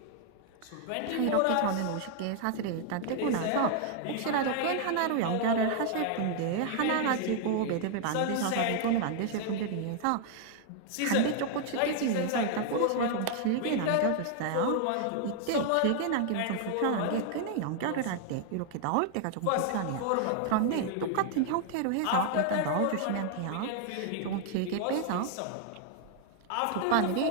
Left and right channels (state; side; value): different; both; correlation 0.00